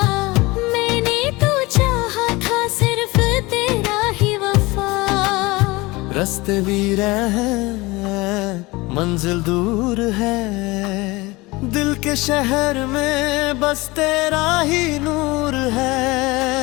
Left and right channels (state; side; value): quieter; right; 22.4 dB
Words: मैंने तो चाहा था सिर्फ तेरा ही वफा। रास्ते वीर हैं, मंजिल दूर है, दिल के शहर में बस तेरा ही नूर है।